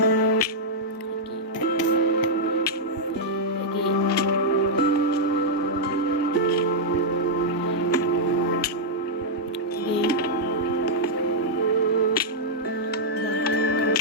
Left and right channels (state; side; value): normal; both; correlation -0.06